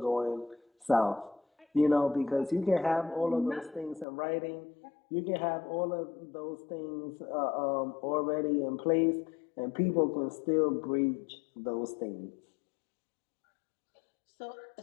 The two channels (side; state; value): right; drops out; at 4.0 s